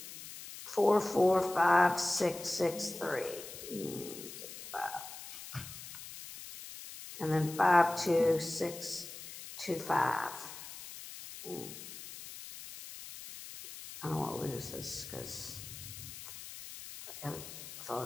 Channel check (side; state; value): left; noise; hiss, 12 dB below the sound